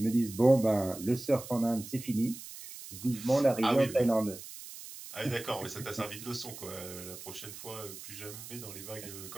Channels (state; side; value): noise; right; hiss, 13 dB below the sound